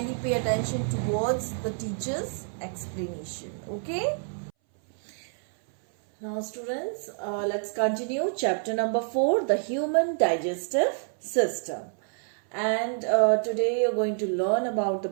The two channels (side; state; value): left; silent; 60 dB below the other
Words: pay attention towards the teacher's explanation. Okay? Now students, let's continue chapter number 4, the human digestive system. And today you're going to learn about the